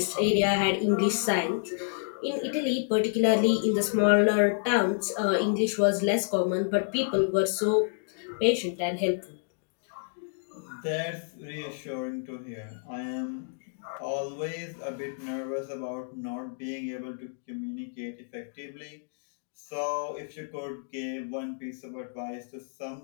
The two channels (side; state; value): right; silent; digital silence